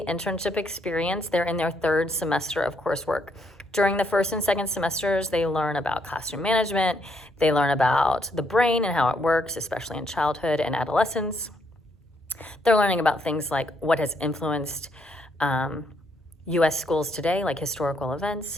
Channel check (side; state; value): both; normal; correlation 0.74